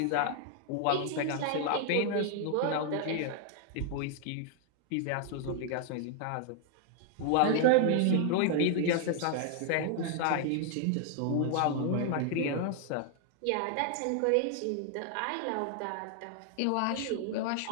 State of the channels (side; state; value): both; different; correlation 0.00